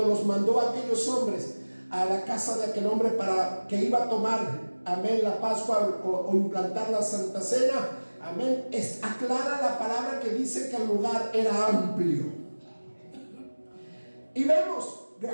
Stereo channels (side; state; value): both; inverted; correlation -1.00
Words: los mandó a aquellos hombres a la casa de aquel hombre para que iba a tomar, amén, la Pascua o implantar la Santa Cena, amén, aclara la palabra que dice que el lugar era amplio. Y vemos,